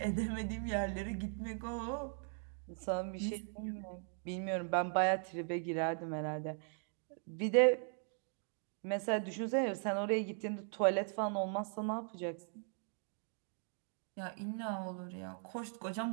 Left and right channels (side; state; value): left; silent; 52 dB below the other